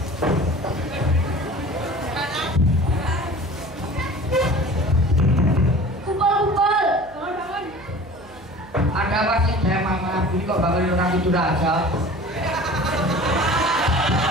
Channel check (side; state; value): right; noise; hum, 22 dB below the sound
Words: kumpul-kumpul. Ada apa sih saya mama ini kok bangun orang tidur aja?